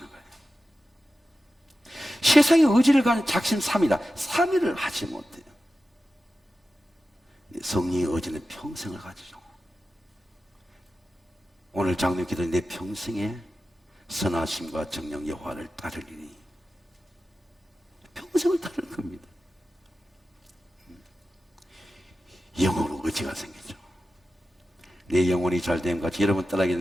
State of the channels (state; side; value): normal; both; correlation 0.93